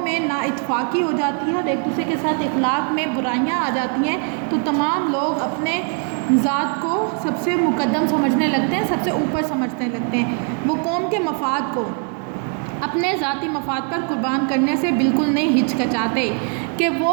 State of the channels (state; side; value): quieter; left; 39.8 dB